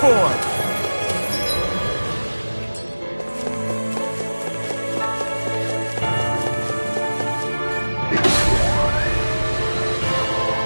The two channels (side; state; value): both; inverted; correlation -1.00